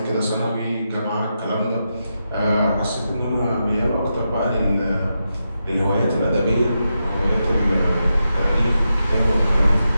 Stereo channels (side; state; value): both; inverted; correlation -0.87